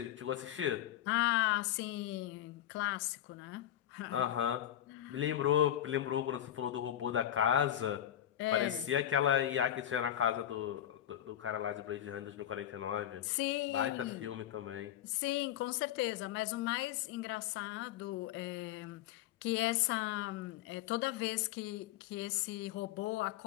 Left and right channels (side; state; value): right; quieter; 11.7 dB